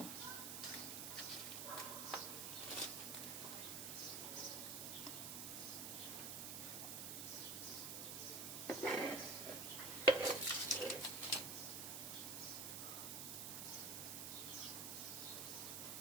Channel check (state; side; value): noise; right; hiss, 4 dB below the sound